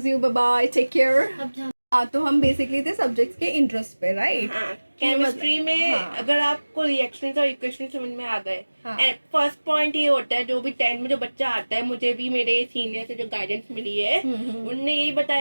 you. Bye bye. Take care. अब जा हाँ तो हम basically थे subjects के interest पे, right? हाँ, chemistry में हाँ। अगर आपको रिएक्शंस और इक्वेशन समझ में आ गए, हाँ। फर्स्ट पॉइंट ये होता है, जो भी 10 में जो बच्चा आता है, मुझे भी मेरे सीनियर से जो गाइडेंस मिली है, उनने यही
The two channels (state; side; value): inverted; both; correlation -1.00